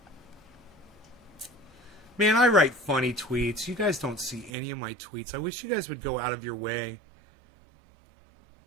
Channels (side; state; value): left; drops out; at 4.5 s